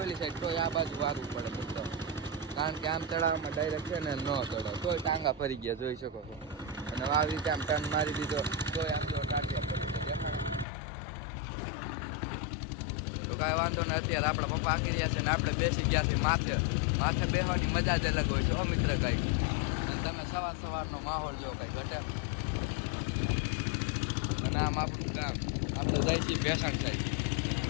સાઈડ તોય આ બાજુ વારવું પડે મિત્રો, કારણ કે આમ ચડાવવામાં ડાયરેક્ટ છે ને ન ચડાવે તોય ટાંગા ફરી ગયા, જોઈ શકો છો. અને આવી રીતે આમ ટર્ન મારી દીધો તોય આમ જો ટાંટિયા ફરી ગયા. તો કાંઈ વાંધો નહીં. અત્યારે આપણા પપ્પા આકી રહ્યા છે ને આપણે બેસી ગયા છીએ માથે. માથે બેસવાની મજા જ અલગ હોય છે મિત્ર કાંઈ. અને તમે સવારનો માહોલ જો કંઈ ઘટે. અને આમ આપણું કામ આપણે જાય છીએ ભેસાણ સાઈડ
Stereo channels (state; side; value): drops out; right; at 10.7 s